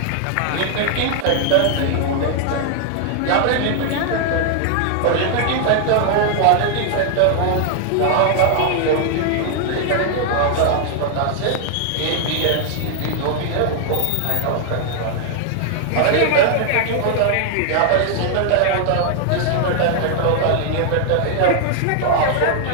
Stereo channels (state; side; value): different; both; correlation 0.00